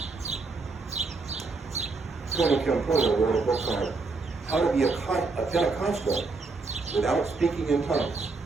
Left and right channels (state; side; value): quieter; left; 3.9 dB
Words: Tony Campolo wrote a book on how to be a Pentecostal without speaking in tongues.